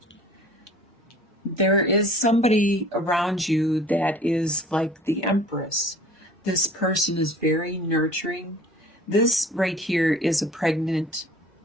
There is somebody around you that is like the Empress. This person is very nurturing. This right here is a pregnant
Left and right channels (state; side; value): normal; both; correlation 0.48